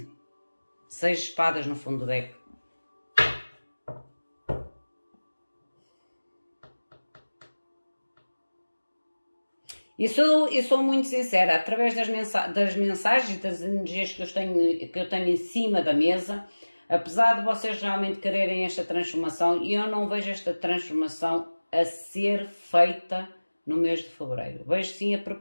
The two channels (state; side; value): inverted; both; correlation -1.00